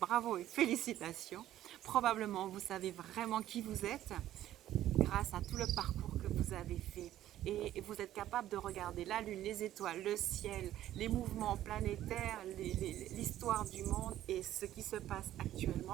bravo et félicitations. Probablement vous savez vraiment qui vous êtes grâce à tout le parcours que vous avez fait. Et vous êtes capable de regarder la lune, les étoiles, le ciel, les mouvements planétaires, l'histoire du monde et ce qui se passe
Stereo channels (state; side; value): quieter; left; 13.0 dB